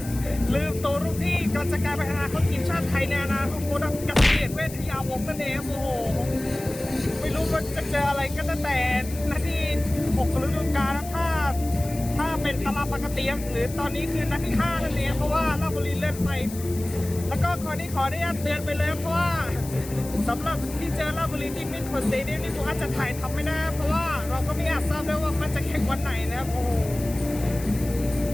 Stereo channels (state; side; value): noise; left; hiss, 14 dB below the sound